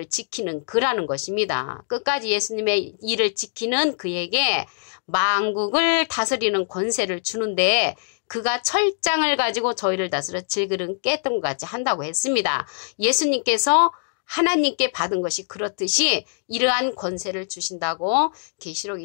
지키는 그라는 것입니다. 끝까지 예수님의 일을 지키는 그에게 만국을 다스리는 권세를 주는데 그가 철장을 가지고 저희를 다스려 질그릇 깼던 것 같이 한다고 했습니다. 예수님께서 하나님께 받은 것이 그렇듯이 이러한 권세를 주신다고 계시록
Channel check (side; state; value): right; silent; digital silence